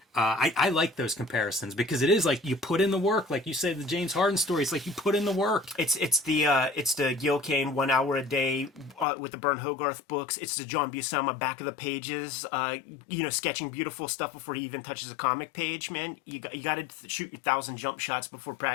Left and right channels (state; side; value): drops out; right; at 9.1 s